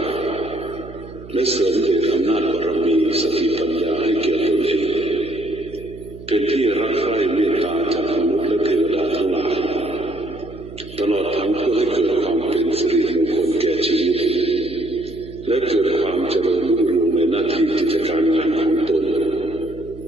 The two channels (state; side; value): noise; right; hum, 16 dB below the sound